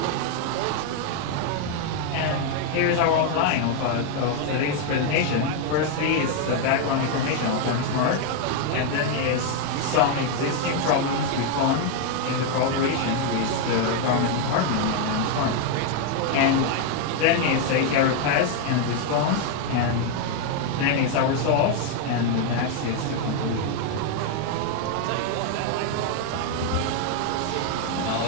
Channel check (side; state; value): both; different; correlation 0.01